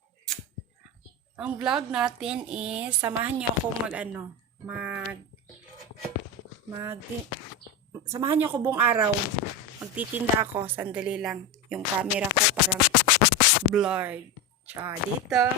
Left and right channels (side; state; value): both; normal; correlation 0.17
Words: Ang vlog natin is, samahan niyo ako samahan niyo ako buong araw. Magtitinda ako. Sandali lang. Yung camera ko parang blurred. Tsaka dito.